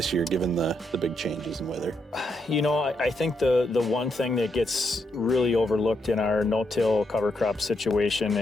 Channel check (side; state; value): both; normal; correlation 0.80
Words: year, given the big changes in weather? You know, I think the one thing that gets really overlooked in our no-till cover crop situation